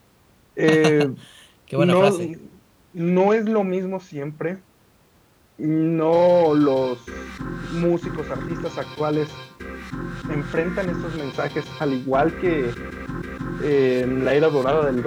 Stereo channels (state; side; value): identical; both; correlation 1.00